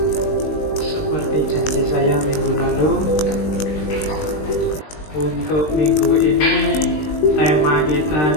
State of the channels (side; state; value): right; late; 20 ms